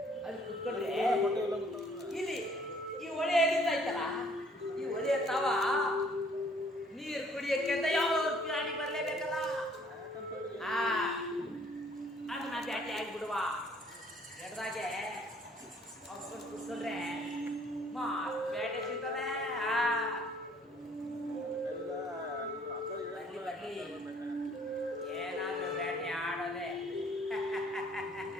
ಅಲ್ಲಿ ಕುತ್ಕೊಂಡ್ರೆ ಇಲ್ಲಿ ಈ ಹೊಳೆ ಹರಿತಾ ಇತ್ತಲ್ಲ ಈ ಹೊಳೆಯ ತವ ನೀರು ಕುಡಿಯಕ್ಕೆ ಅಂತ ಯಾವ್ದಾದ್ರು ಪ್ರಾಣಿ ಬರ್ಲೇಬೇಕಲ್ಲ ಆ ಅದನ್ನ ಬ್ಯಾಟಿ ಆಗಿಬಿಡುವ ಎಡ್ದಾಗೆ ಅವ್ಕೊಂಡು ಕುತ್ಕೊಂಡ್ರೆ ಮಾ ಬೇಟೆ ಸಿಗ್ತದೆ ಬರ್ಲಿ ಬರ್ಲಿ ಏನಾದ್ರೂ ಬೇಟೆ ಆಡೋದೆ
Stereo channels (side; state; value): both; normal; correlation 0.60